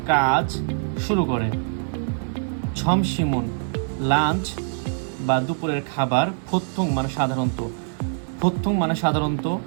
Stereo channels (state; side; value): silent; left; digital silence